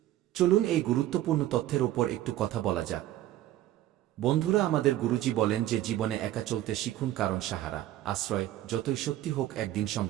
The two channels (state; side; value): quieter; left; 14.0 dB